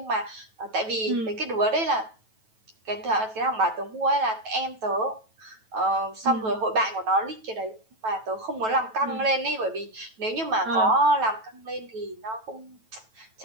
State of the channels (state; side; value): late; left; 9.1 ms